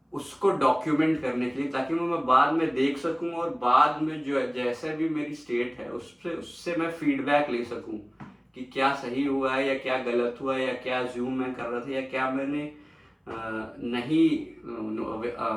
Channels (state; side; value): identical; both; correlation 1.00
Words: उसको डॉक्यूमेंट करने के लिए, ताकि मैं बाद में देख सकूं और बाद में जो जैसा भी मेरी स्टेट है उससे मैं फीडबैक ले सकूं कि क्या सही हुआ है या क्या गलत हुआ है, या क्या जूम मैं कर रहा था, या क्या मैंने नहीं